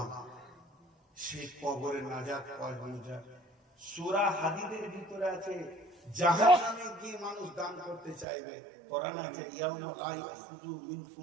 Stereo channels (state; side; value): drops out; left; at 8.2 s